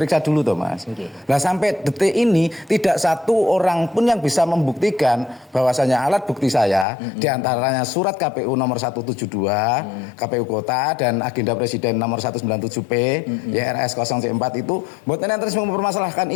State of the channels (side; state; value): right; drops out; at 6.9 s